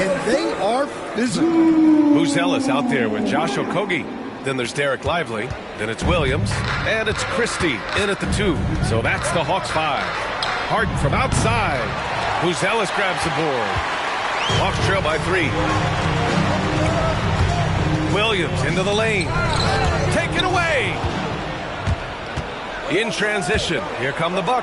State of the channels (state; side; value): identical; both; correlation 1.00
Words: they are physical. Buzelis out there with Josh Okogie. Then there's Derek Lively. Then it's Williams. And it's Christie in at the 2. So that's the Hawks 5. Harden from outside. Buzelis grabs the board. Hawks trail by 3. Williams into the lane. Taken away. In transition. Here come the